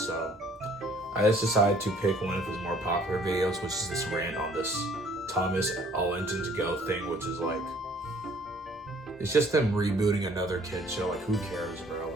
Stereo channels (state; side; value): normal; both; correlation 0.58